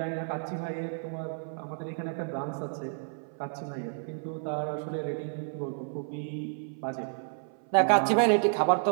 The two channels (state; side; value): silent; left; 56 dB below the other